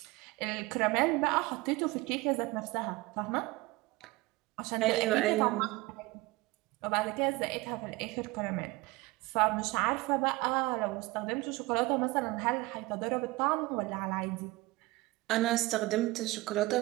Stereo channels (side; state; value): left; quieter; 21.1 dB